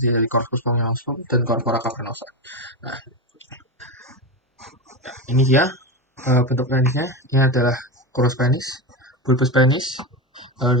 dari corpus spongiosum dan corpora cavernosa. Nah, ini dia bentuk penisnya. Ini adalah crus penis, bulbus penis,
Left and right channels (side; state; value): both; normal; correlation 0.17